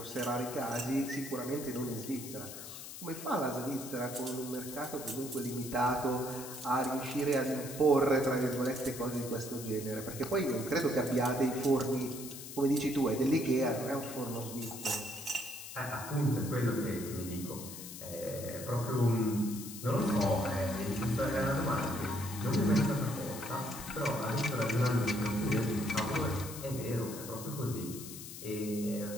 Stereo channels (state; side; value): noise; left; hiss, 11 dB below the sound